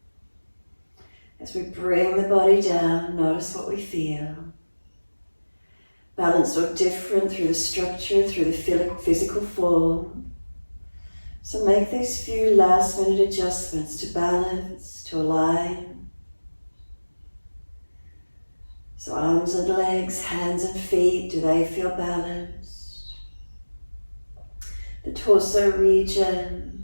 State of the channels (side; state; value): both; inverted; correlation -1.00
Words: As we bring the body down, notice what we feel. Balanced or different through the structure, through the physical form. So make these few last minute adjustments to balance, to align. So arms and legs, hands and feet, do they feel balanced? The torso region,